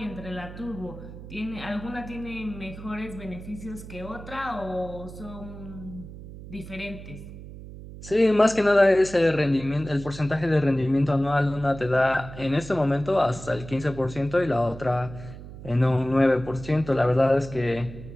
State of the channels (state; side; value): noise; right; hum, 14 dB below the sound